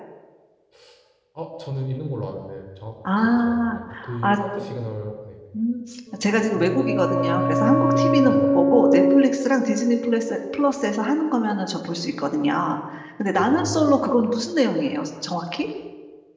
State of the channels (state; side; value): identical; both; correlation 1.00